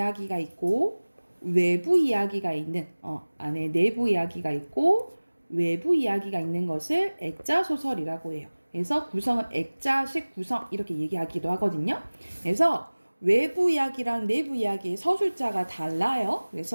있고 외부 이야기가 있는, 안에 내부 이야기가 있고 외부 이야기가 있는 것을 액자 소설이라고 해요. 그래서 구성은 액자식 구성 이렇게 얘기하기도 하거든요. 그래서 외부 이야기랑 내부 이야기의 서술자가 달라요.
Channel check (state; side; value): inverted; both; correlation -1.00